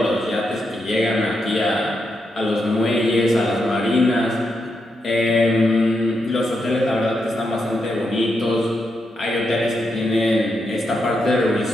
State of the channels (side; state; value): both; normal; correlation 0.83